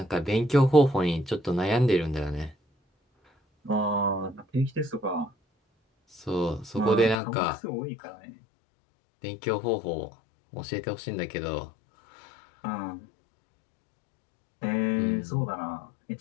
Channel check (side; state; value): right; drops out; at 7.2 s